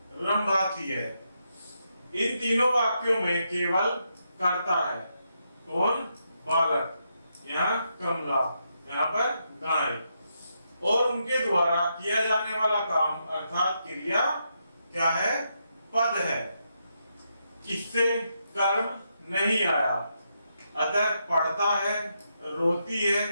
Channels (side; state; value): both; inverted; correlation -0.81